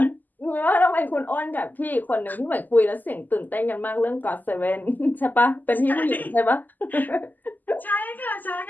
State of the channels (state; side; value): late; right; 0.085 ms